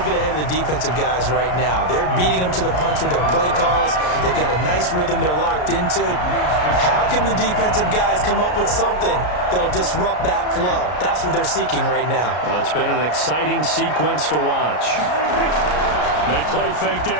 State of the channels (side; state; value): right; late; 33 ms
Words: bit ahead of the defensive guys right now. They're beating them to the punch with their play calls. They've got a nice rhythm they're locked into. How can the defensive guys come up with something that'll disrupt that flow? That's what they're seeking right now. Well, it's been an exciting sequence to watch. They play fake to